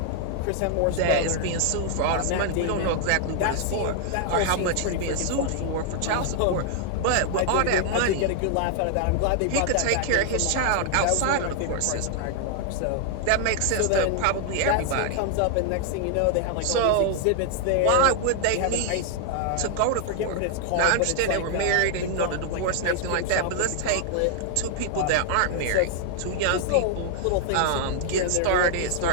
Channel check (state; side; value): different; both; correlation 0.00